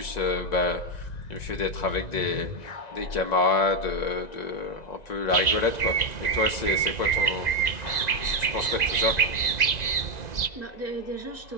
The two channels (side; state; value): right; late; 1.9 ms